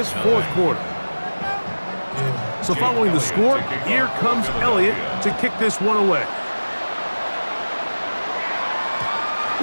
fourth quarter. So following the score, here comes Elliott to kick this one away.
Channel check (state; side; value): inverted; both; correlation -1.00